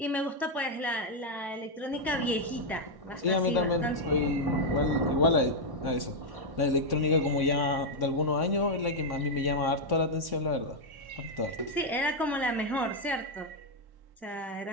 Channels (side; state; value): left; late; 1.1 ms